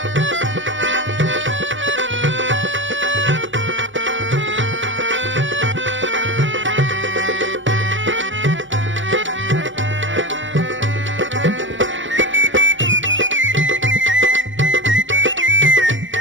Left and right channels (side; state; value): left; late; 0.56 ms